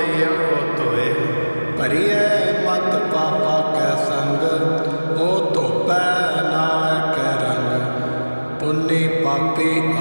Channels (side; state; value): both; inverted; correlation -1.00